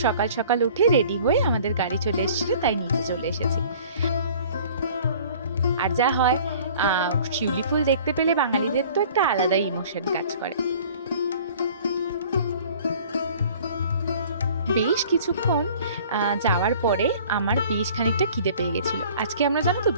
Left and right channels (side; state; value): both; inverted; correlation -0.49